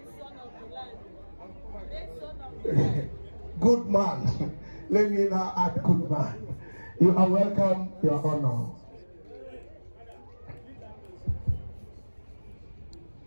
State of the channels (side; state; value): both; inverted; correlation -1.00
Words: son of the land. Good man. Let me now add good man. You are welcome, Your Honor.